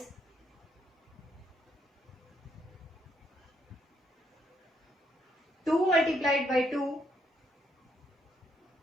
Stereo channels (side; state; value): both; normal; correlation 0.73